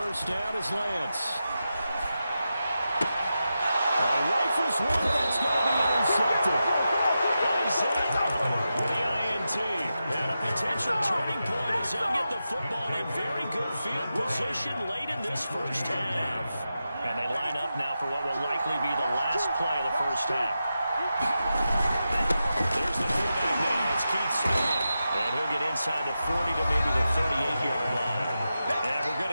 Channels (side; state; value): both; inverted; correlation -0.90